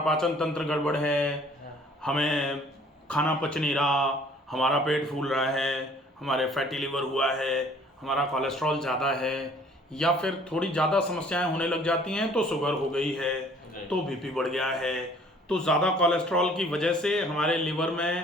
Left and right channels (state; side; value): normal; both; correlation 0.56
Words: पाचन तंत्र गड़बड़ है, हमें खाना पच नहीं रहा, हमारा पेट फूल रहा है, हमारे फैटी लिवर हुआ है, हमारा कोलेस्ट्रॉल ज़्यादा है, या फिर थोड़ी ज़्यादा समस्याएं होने लग जाती हैं तो शुगर हो गई है, तो बीपी बढ़ गया है, तो ज़्यादा कोलेस्ट्रॉल की वजह से हमारे लिवर